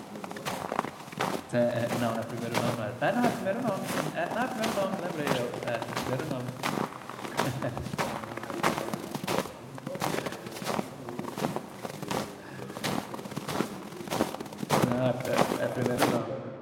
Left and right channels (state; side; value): identical; both; correlation 1.00